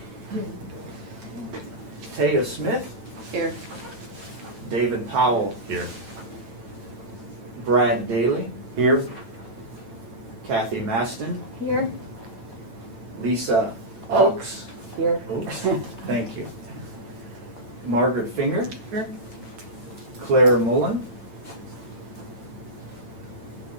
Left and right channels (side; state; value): left; late; 9.0 ms